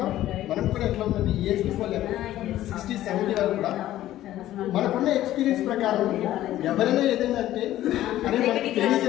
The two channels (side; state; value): right; quieter; 13.8 dB